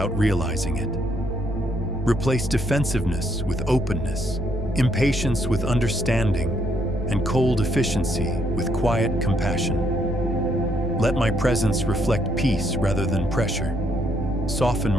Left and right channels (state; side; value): normal; both; correlation 0.72